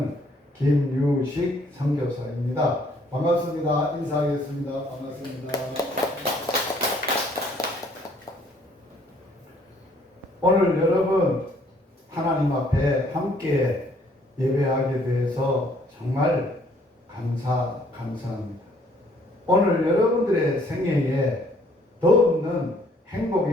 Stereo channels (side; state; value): both; normal; correlation 0.63